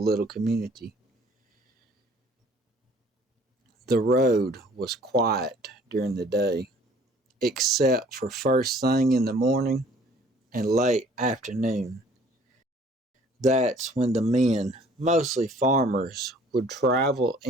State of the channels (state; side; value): normal; both; correlation 0.55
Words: community. The road was quiet during the day, except for first thing in the morning and late afternoon. That's when the men, mostly farmers, would travel